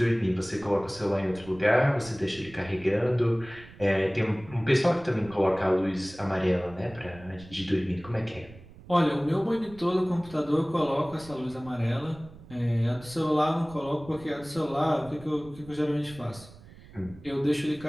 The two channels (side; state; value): right; noise; rumble, 20 dB below the sound